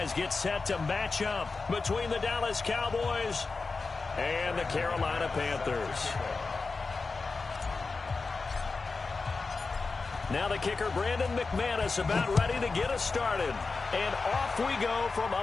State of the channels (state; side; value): quieter; right; 4.2 dB